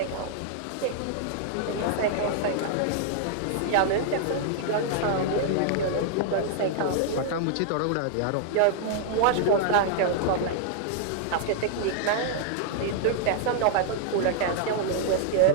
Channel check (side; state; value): both; different; correlation -0.01